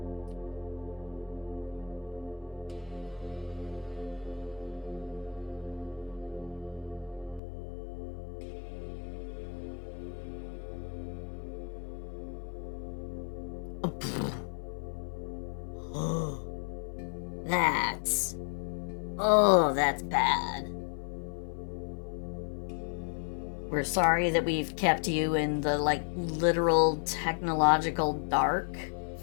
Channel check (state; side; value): drops out; right; at 7.4 s